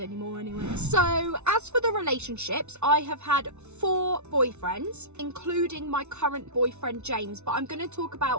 anyway. So as for the relationships, I have had 4 boyfriends, including my current boyfriend James, but I'm going to talk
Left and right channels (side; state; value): left; late; 0.82 ms